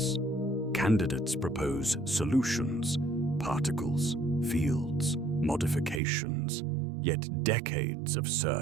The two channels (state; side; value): drops out; left; at 6.0 s